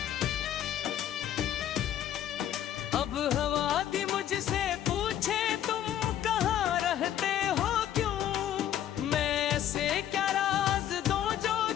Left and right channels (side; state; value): right; quieter; 11.1 dB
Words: अब हवा दी मुझसे पूछे तुम कहाँ रहते हो क्यों मैं ऐसे क्या राज दूं जो